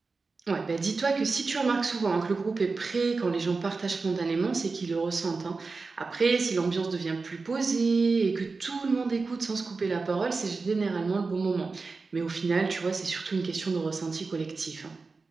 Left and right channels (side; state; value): left; quieter; 4.1 dB